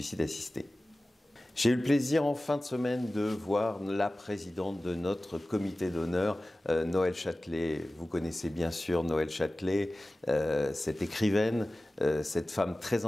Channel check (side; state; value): both; normal; correlation 0.97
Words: assisté. J'ai eu le plaisir en fin de semaine de voir la présidente de notre comité d'honneur, Noël Châtelet. Vous connaissez bien sûr Noël Châtelet, cette écrivaine, cette femme très